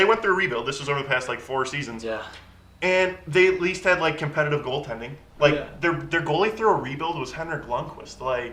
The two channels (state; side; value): identical; both; correlation 1.00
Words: went through a rebuild. This was over the past 4 seasons. Yeah. And they at least had competitive goaltending. Their goalie through a rebuild was Henrik Lundqvist.